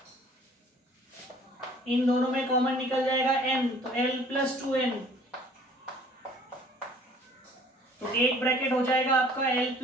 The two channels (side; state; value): both; normal; correlation 0.53